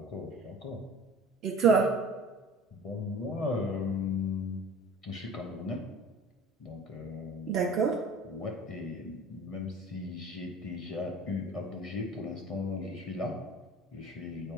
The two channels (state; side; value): normal; both; correlation 0.43